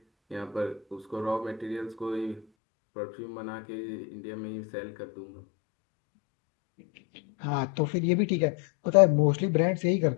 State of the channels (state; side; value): drops out; right; at 2.5 s